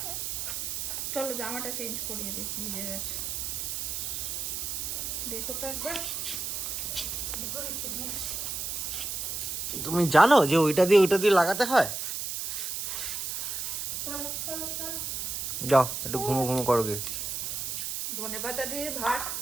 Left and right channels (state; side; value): noise; right; hiss, 3 dB below the sound